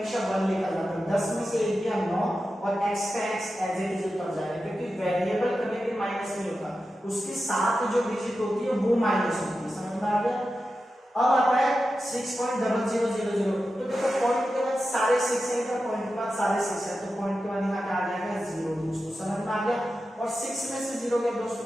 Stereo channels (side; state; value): both; normal; correlation 0.91